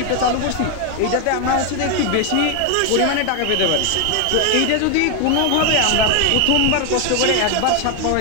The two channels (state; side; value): different; both; correlation 0.01